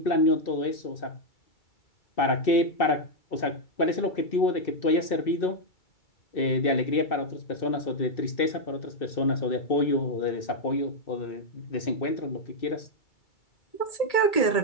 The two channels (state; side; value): late; right; 2.6 ms